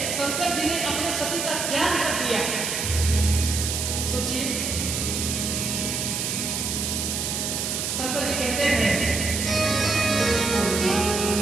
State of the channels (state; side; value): noise; right; hiss, 1 dB below the sound